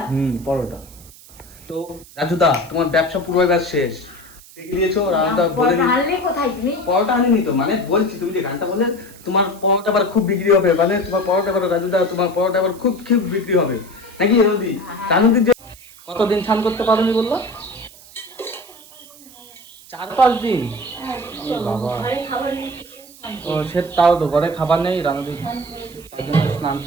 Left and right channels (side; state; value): right; noise; hiss, 21 dB below the sound